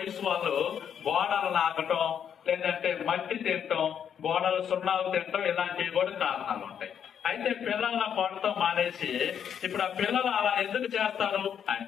వాళ్ళు గోడలు నాకటం, లేదంటే మట్టి తినటం, గోడలు సున్నాలు తినటం, ఇలాంటివి కూడా కారణాలు ఉంటాయి. అయితే పిల్లల కొనటం మానేసి ఇప్పుడు ఆ పిల్లలు అలా ఎందుకు చేస్తారు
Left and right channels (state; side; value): quieter; right; 8.4 dB